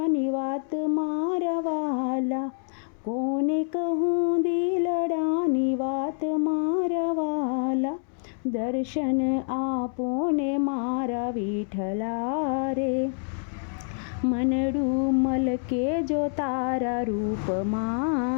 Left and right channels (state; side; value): silent; right; 60 dB below the other